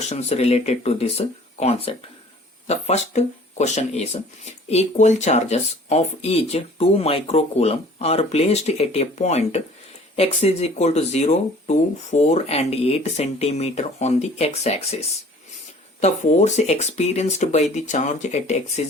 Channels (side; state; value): both; normal; correlation 0.50